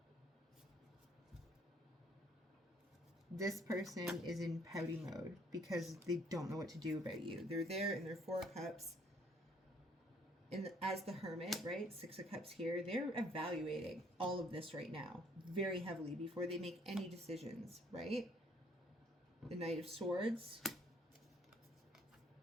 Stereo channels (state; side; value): normal; both; correlation 0.63